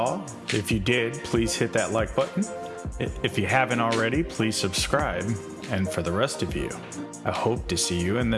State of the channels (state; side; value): identical; both; correlation 1.00